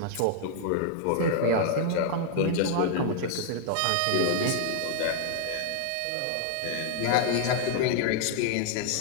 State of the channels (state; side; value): different; both; correlation -0.01